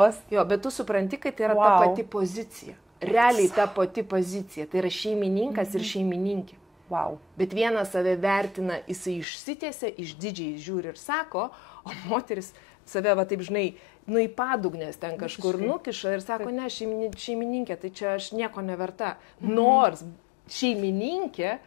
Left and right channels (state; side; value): drops out; right; at 9.2 s